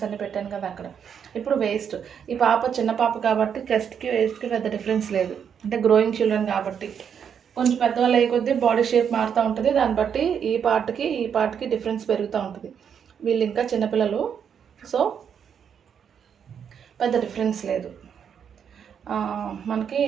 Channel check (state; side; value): quieter; left; 7.7 dB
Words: అన్నీ పెట్టాను కదా అక్కడ. ఇప్పుడు వేస్ట్, ఈ పాప చిన్న పాప కాబట్టి చెస్ట్కి వేస్ట్కి పెద్ద డిఫరెన్స్ లేదు, అంటే గ్రోయింగ్ చిల్డ్రన్ కాబట్టి. కొంచెం పెద్దవాళ్ళు అయ్యే కొద్దీ బాడీ షేప్ మారుతూ ఉంటుంది, దాన్ని బట్టి ఈ పార్ట్కి డిఫరెన్స్ పెరుగుతూ ఉంటుంది. వీళ్ళు ఇంకా చిన్నపిల్లలు, సో పెద్ద డిఫరెన్స్ లేదు. మనకి